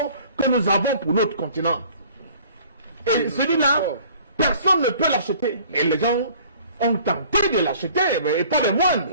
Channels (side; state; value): both; inverted; correlation -0.52